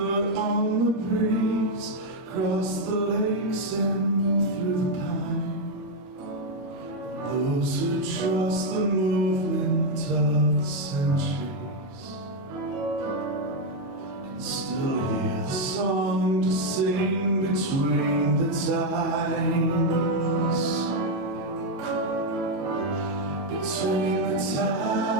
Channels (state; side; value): late; left; 21 ms